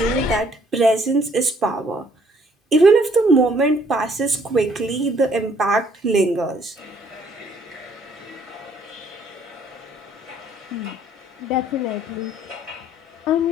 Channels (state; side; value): normal; both; correlation 0.63